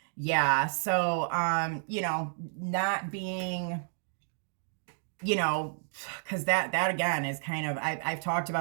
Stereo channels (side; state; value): left; silent; digital silence